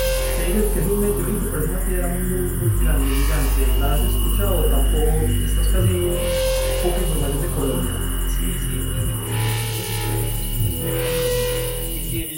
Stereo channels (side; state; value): both; identical; correlation 1.00